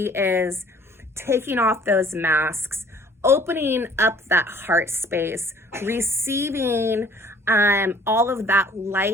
is taking off those masks, opening up that heart space, receiving all of that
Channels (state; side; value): normal; both; correlation 0.54